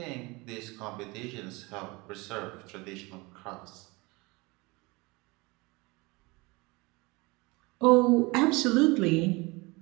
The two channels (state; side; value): quieter; left; 24.9 dB